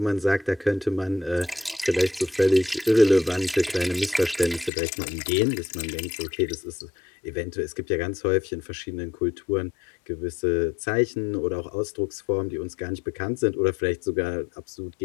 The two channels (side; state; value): right; drops out; at 4.7 s